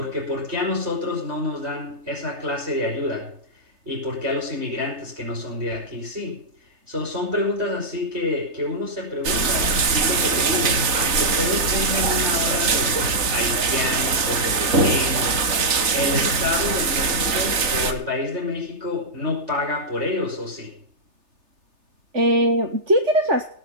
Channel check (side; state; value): left; late; 3.3 ms